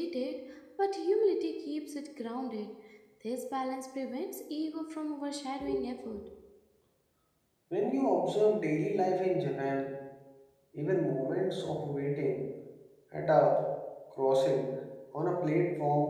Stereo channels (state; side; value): identical; both; correlation 1.00